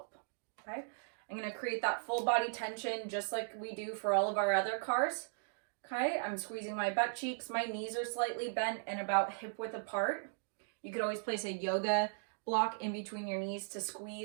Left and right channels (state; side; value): silent; left; digital silence